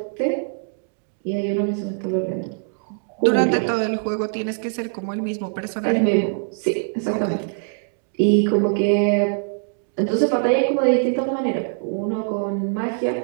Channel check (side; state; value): left; silent; digital silence